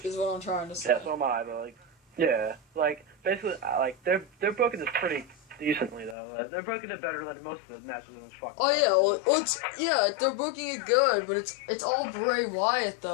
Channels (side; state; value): right; drops out; at 6.2 s